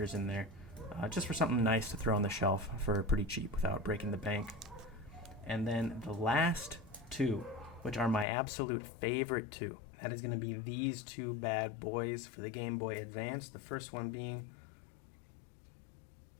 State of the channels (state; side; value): drops out; right; at 8.2 s